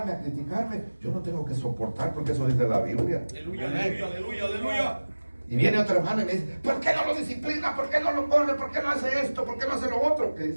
a criticarme, yo no tengo que soportar, porque eso dice la Biblia. Aleluya, aleluya, aleluya, aleluya. Y viene otro hermano y me dice, ¿por qué no lo disciplina? ¿Por qué no lo corre? ¿Por qué no hace esto? ¿Por qué no hace lo otro? ¿Qué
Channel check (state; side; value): inverted; both; correlation -1.00